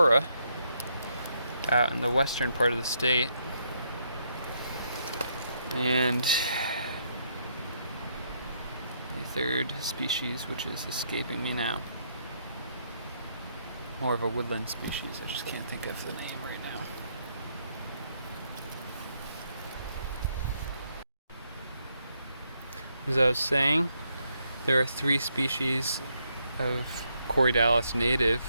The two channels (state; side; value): inverted; both; correlation -0.75